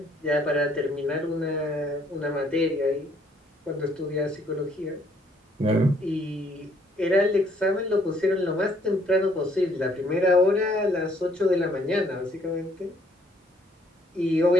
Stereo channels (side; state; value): both; normal; correlation 0.65